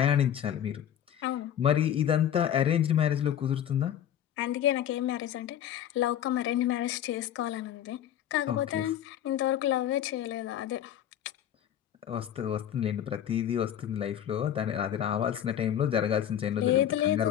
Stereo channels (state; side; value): quieter; right; 10.2 dB